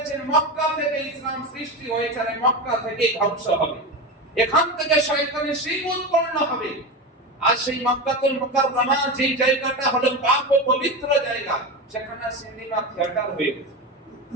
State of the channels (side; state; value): both; normal; correlation 0.20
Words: মক্কা থেকে ইসলাম সৃষ্টি হয়েছে, আর মক্কা থেকে ধ্বংস হবে, এখান থেকে শয়তানের শিং উৎপন্ন হবে। আর সেই মক্কাতুল মুকাররমা যে জায়গাটা হলো পাক ও পবিত্র জায়গা, সেখানে সিনেমা থিয়েটার হয়ে গেছে,